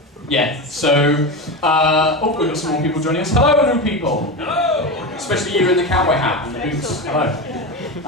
Yeah, so, we've got some more people joining us. Hello, new people. Hello. Especially you in the cowboy hat and the boots. Hello.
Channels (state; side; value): normal; both; correlation 0.21